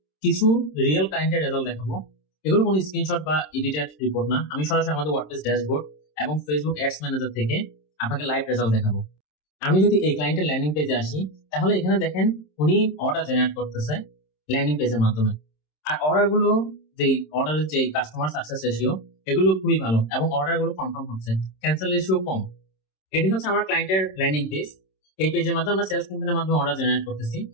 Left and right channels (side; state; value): right; late; 26 ms